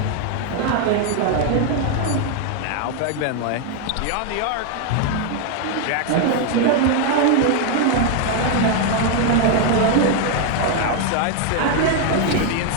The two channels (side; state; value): both; different; correlation 0.01